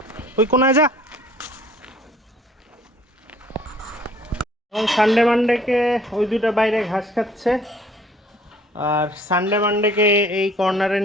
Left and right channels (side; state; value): both; normal; correlation 0.55